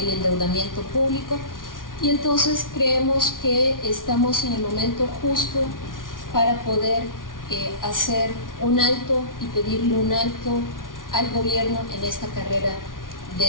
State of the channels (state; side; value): late; right; 0.89 ms